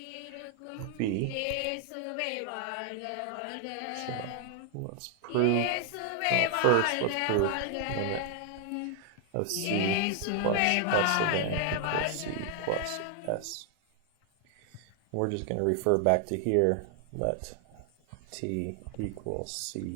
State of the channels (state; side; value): different; both; correlation 0.00